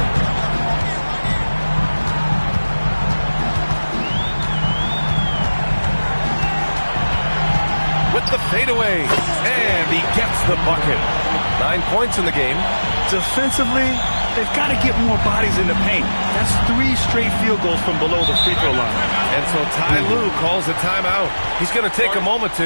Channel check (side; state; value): both; inverted; correlation -1.00